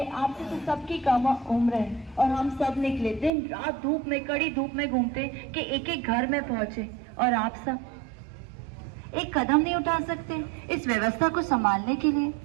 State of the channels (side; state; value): left; drops out; at 3.3 s